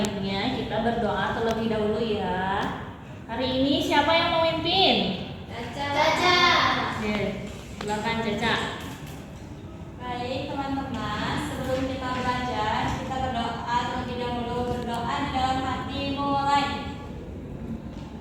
kita berdoa terlebih dahulu ya. Hari ini siapa yang memimpin? Caca. Oke, silakan Caca. Baik teman-teman, sebelum kita belajar, kita berdoa terlebih dahulu. Berdoa di dalam hati, mulai.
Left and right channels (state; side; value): identical; both; correlation 1.00